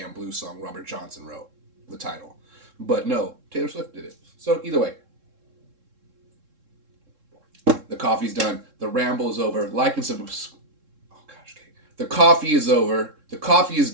blues song Robert Johnson wrote, the title. But no, Taylor Swift did it. So either way, the coffee's done. The ramble is over. Like and subscribe. Oh gosh, okay. The coffee is over. The coffee is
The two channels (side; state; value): left; late; 3.7 ms